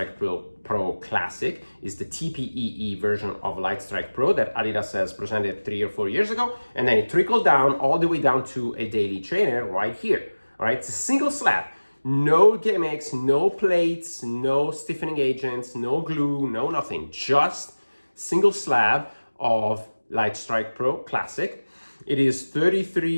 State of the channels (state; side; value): inverted; both; correlation -1.00